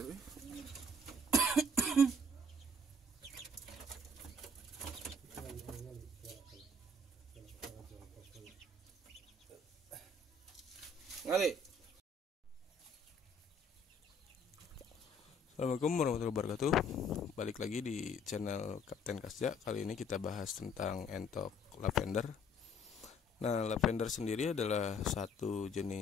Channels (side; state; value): both; normal; correlation 0.59